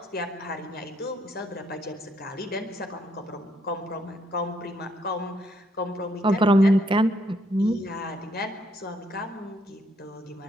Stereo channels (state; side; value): normal; both; correlation 0.72